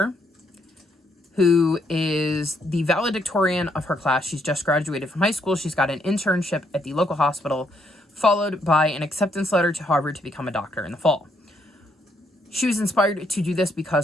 who is the valedictorian of her class. She's just graduated from high school. She's got an internship at the local hospital, followed by an acceptance letter to Harvard to become a doctor in the fall. She was inspired to do this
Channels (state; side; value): normal; both; correlation 0.74